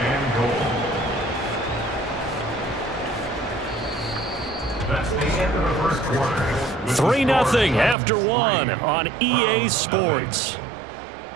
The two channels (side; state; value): left; drops out; at 8.0 s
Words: and goal. That's the end of the first quarter. 3-0 after 1 on EA Sports.